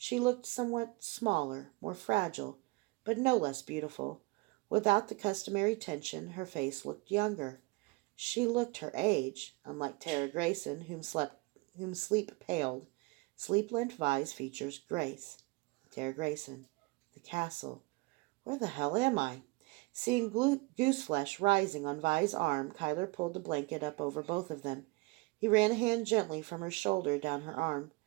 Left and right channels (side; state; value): left; quieter; 26.6 dB